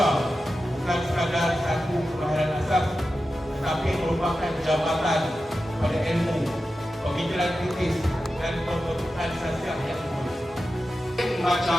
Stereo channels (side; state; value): both; normal; correlation 0.92